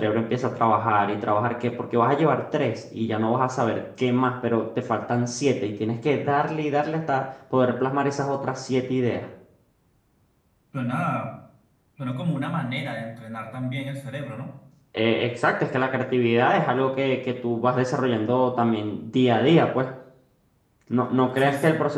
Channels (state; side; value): identical; both; correlation 1.00